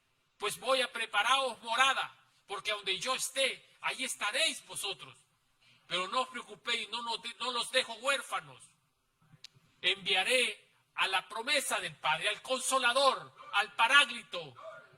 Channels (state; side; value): identical; both; correlation 1.00